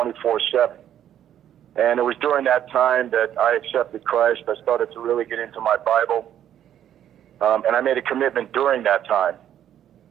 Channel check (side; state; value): left; quieter; 10.6 dB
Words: And it was during that time that I accepted Christ. I started to really get into my Bible. And I made a commitment during that time.